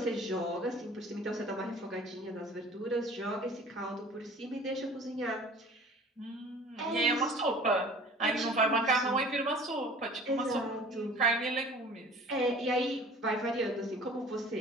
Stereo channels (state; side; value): normal; both; correlation 0.46